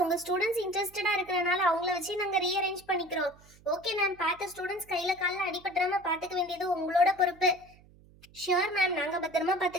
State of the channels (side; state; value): right; noise; hum, 26 dB below the sound